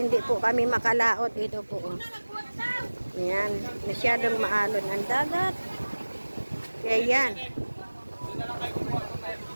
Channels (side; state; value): both; inverted; correlation -1.00